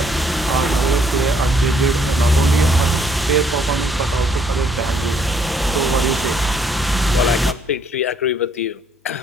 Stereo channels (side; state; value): both; normal; correlation 0.66